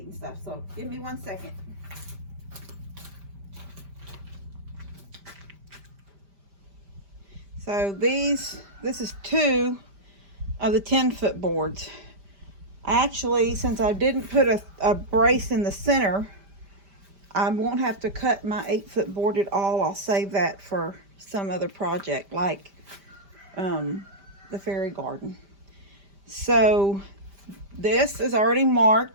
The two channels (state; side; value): late; left; 5.0 ms